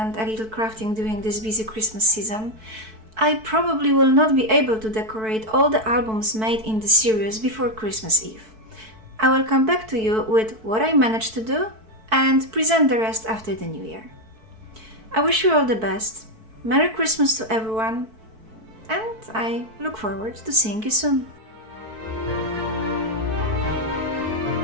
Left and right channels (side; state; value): left; late; 4.6 ms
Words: a little crafting during this busy Christmas season. I probably will not be able to decorate all the albums made in the series before Christmas Eve. I will come back to you with what I managed to do and present the rest after the New Year. I wish you all the best. Merry Christmas to everyone, and I look forward to seeing you soon.